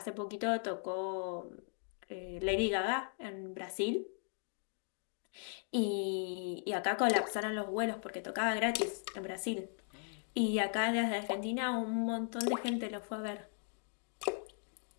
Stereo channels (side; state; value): right; silent; 53 dB below the other